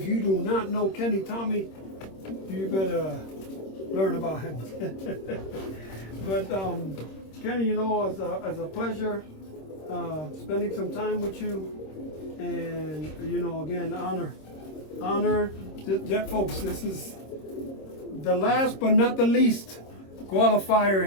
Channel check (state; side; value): late; right; 26 ms